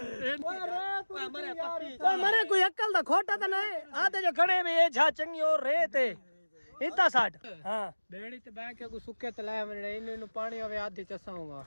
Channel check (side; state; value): both; inverted; correlation -1.00